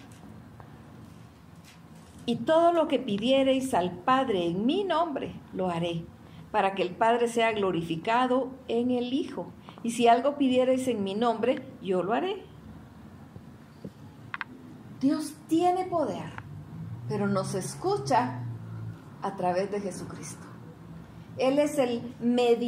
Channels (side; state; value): both; identical; correlation 1.00